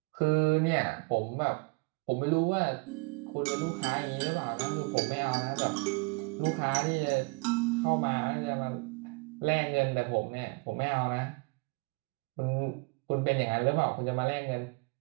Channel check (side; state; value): left; quieter; 29.2 dB